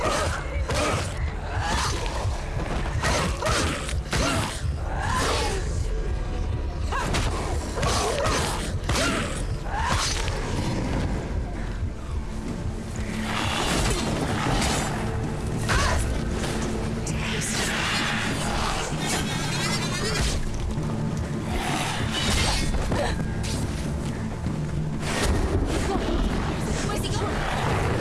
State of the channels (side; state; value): both; identical; correlation 1.00